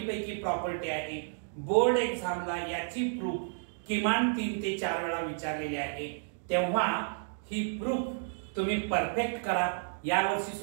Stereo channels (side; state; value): left; silent; digital silence